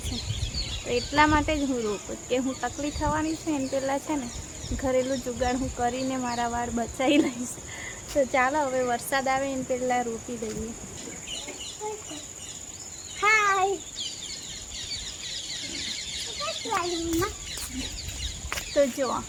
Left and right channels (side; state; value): both; identical; correlation 1.00